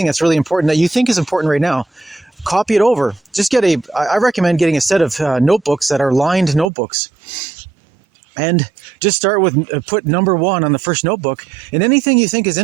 that's really important that you think is important right now, copy it over. Just I recommend getting a set of notebooks that are lined notebooks. And just start with, put number 1 on the first notebook, and anything you think is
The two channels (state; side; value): drops out; left; at 6.7 s